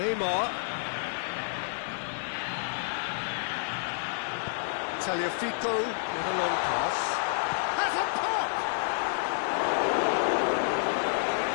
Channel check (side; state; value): right; silent; 58 dB below the other